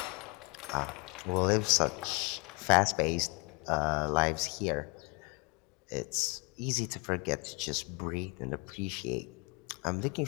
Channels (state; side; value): quieter; right; 30.5 dB